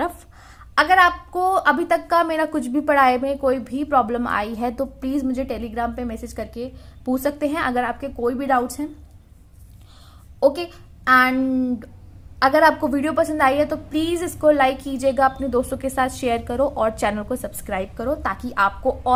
अगर आपको अभी तक का मेरा कुछ भी पढ़ाई में कोई भी प्रॉब्लम आई है तो प्लीज़ मुझे टेलीग्राम पे मैसेज करके पूछ सकते हैं, अगर आपके कोई भी डाउट्स हैं। ओके, एंड अगर आपको वीडियो पसंद आई है तो प्लीज़ इसको लाइक कीजिएगा, अपने दोस्तों के साथ शेयर करो और चैनल को सब्सक्राइब करो, ताकि आपको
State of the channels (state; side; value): identical; both; correlation 1.00